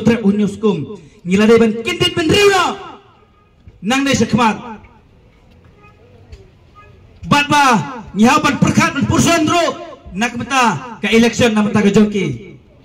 hunyau skum ngila de ban kendit benreu na nang de sekmat bat ba nyaw ban perkat ban purson ro nak meta ke election na meta ke joki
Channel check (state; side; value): identical; both; correlation 1.00